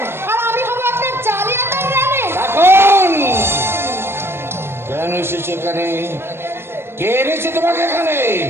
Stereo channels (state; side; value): late; left; 0.12 ms